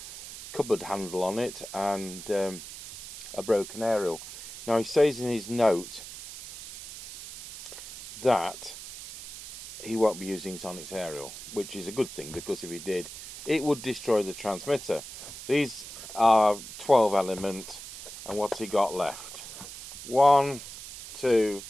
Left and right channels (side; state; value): right; noise; hiss, 12 dB below the sound